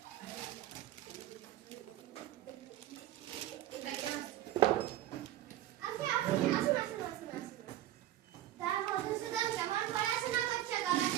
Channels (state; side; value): quieter; left; 13.6 dB